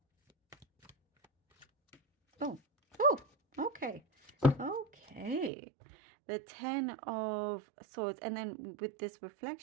Oh, okay. The Ten of Swords. And then with this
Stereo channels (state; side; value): drops out; left; at 5.5 s